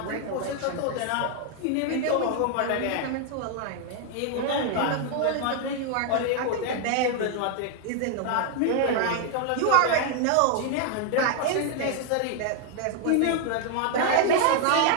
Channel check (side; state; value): both; different; correlation 0.00